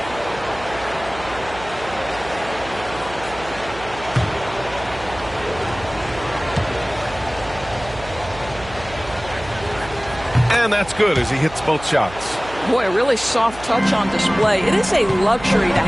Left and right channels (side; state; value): right; noise; hum, 15 dB below the sound